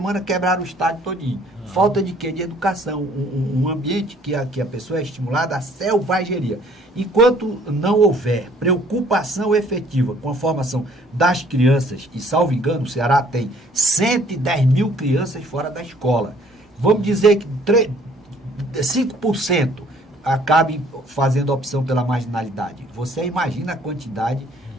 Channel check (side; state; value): both; normal; correlation 0.58